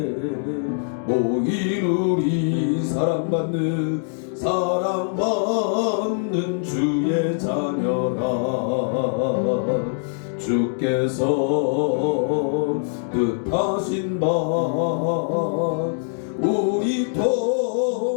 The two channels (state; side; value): silent; right; digital silence